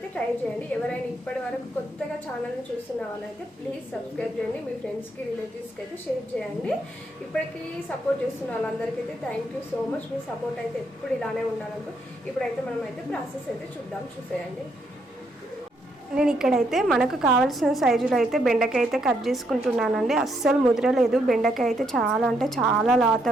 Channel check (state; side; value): normal; both; correlation 0.75